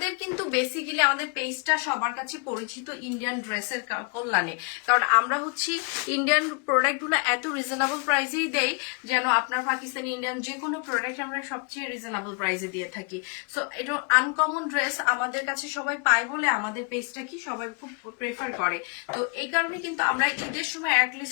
কিন্তু বেসিক্যালি আমাদের পেজটা সবার কাছে পরিচিত ইন্ডিয়ান ড্রেসের কল্যাণে, কারণ আমরা হচ্ছে ইন্ডিয়ান প্রোডাক্টগুলো এত রিজনেবল প্রাইসেই দেই যেন আপনার পাকিস্তানি ইন্ডিয়ান যে কোনো প্রোডাক্ট আমরা সবচেয়ে রিজনেবল প্রাইসে দিয়ে থাকি। সো এটা আনকমন ড্রেস আমাদের কাছে সবাই পায় বলে আমাদের পেজটা কি সবাই খুব প্রেফার করে। তো এই কারণে কিন্তু আমরা ঈদের সময়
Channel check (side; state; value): right; quieter; 32.6 dB